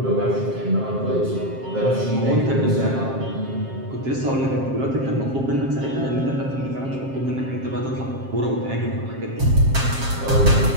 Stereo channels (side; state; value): left; late; 7.5 ms